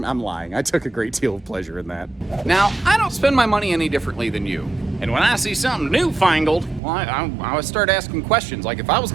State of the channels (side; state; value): left; drops out; at 6.8 s